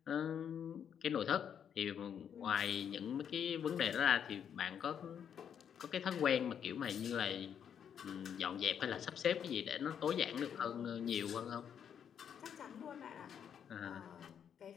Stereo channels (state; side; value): quieter; right; 8.3 dB